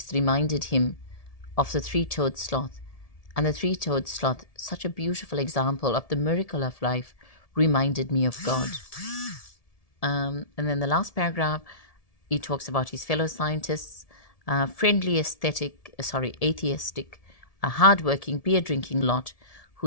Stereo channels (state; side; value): late; right; 1.7 ms